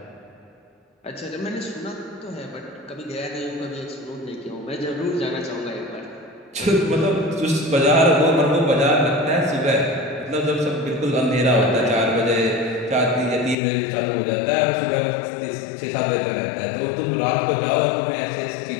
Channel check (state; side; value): drops out; right; at 13.6 s